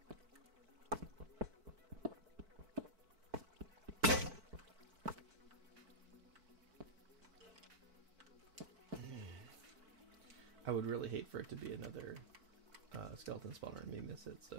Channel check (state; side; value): late; left; 4.5 ms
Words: I would really hate for it to be another skeleton spawner and me miss it,